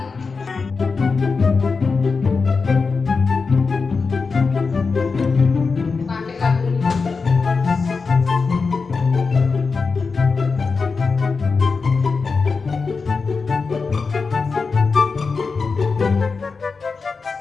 Pakai lagu ini.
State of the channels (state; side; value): quieter; right; 4.6 dB